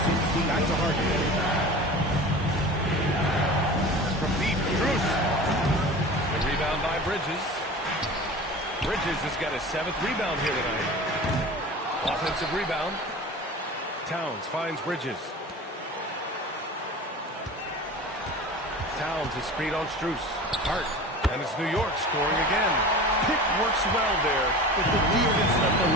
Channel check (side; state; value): both; normal; correlation 0.36